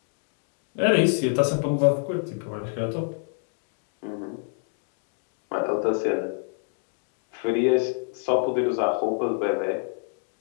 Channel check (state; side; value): silent; right; 60 dB below the other